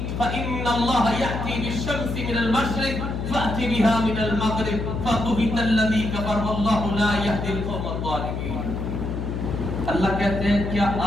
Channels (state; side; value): noise; left; hum, 3 dB below the sound